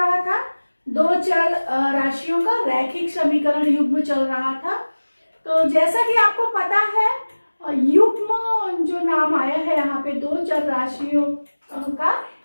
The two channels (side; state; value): both; inverted; correlation -1.00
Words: था, दो चल राशियों का रैखिक समीकरण युग्म चल रहा था। तो जैसा कि आपको पता है, युग्म जो नाम आया है यहाँ पे दो चल राशियों का